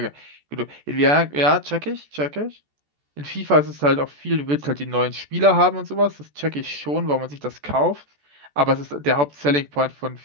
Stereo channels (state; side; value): late; left; 14 ms